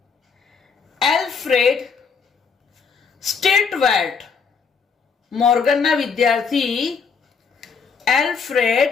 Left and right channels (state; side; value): quieter; right; 5.7 dB